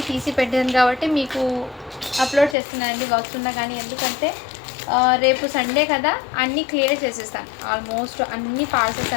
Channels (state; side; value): drops out; right; at 2.6 s